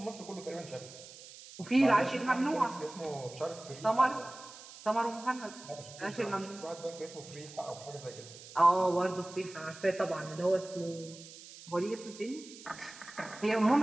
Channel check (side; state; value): right; noise; hiss, 17 dB below the sound